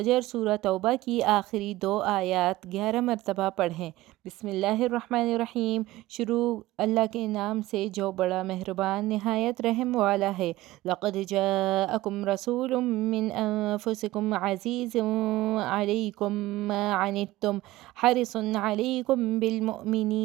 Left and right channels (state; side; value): quieter; left; 17.3 dB